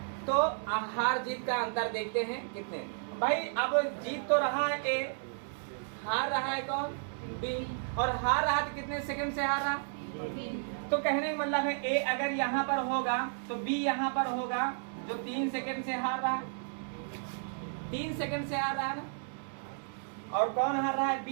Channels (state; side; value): silent; left; digital silence